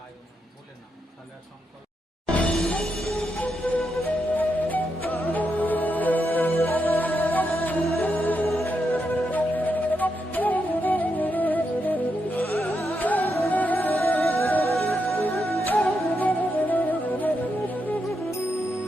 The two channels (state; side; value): normal; both; correlation 0.83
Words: নমো বলে না, তাহলে সংকল্প।